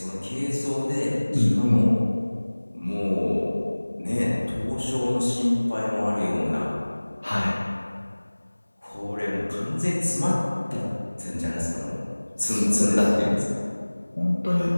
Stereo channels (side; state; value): both; inverted; correlation -1.00